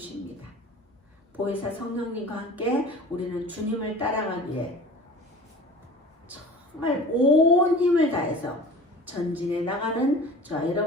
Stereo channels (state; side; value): normal; both; correlation 0.41